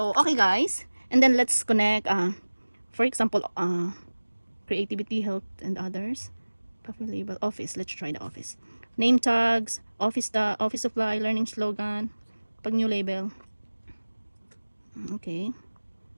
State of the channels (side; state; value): both; inverted; correlation -1.00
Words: okay guys. And then let's connect, for example, creativity, health, and others. Coffee label, office. Let's try the office. Name tags, office supply, learning slogan. Pag new label. Okay.